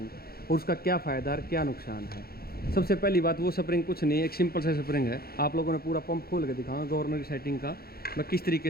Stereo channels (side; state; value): right; late; 0.44 ms